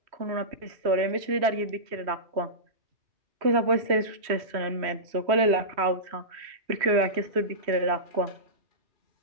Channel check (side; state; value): left; late; 3.1 ms